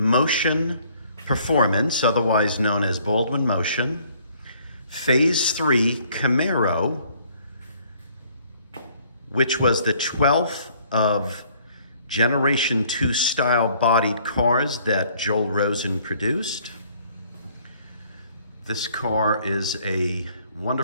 Performance, otherwise known as Baldwin Motion, Phase III Camaro, which was the 12th of Generation 2 style bodied cars that Joel Rosen produced. This car is a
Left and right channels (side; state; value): both; inverted; correlation -0.61